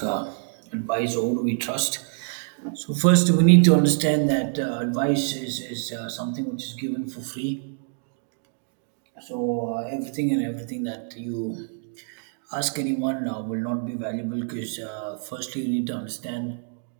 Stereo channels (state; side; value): silent; left; 61 dB below the other